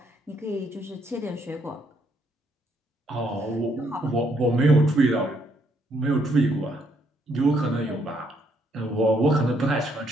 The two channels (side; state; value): both; normal; correlation 0.72